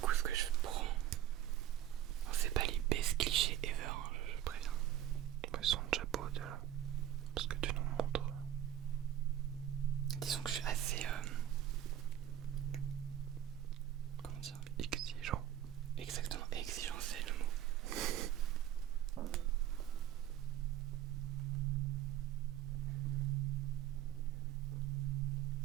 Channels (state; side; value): quieter; left; 11.7 dB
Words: ce que je prends. C'est pas les best clichés ever, hein, je préviens. Ils sont déjà beaux déjà. Parce que tu nous montres. Disons que je suis assez... comment dire? Exigeant. Exactement, exigeant c'est le mot.